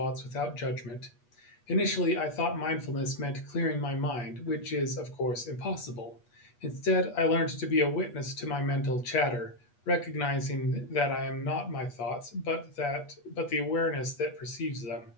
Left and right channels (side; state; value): right; late; 8.3 ms